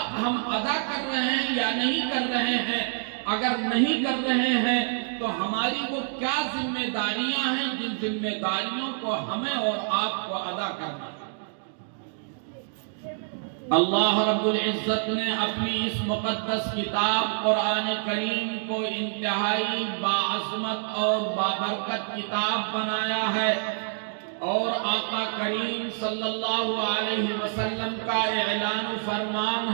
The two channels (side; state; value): left; silent; digital silence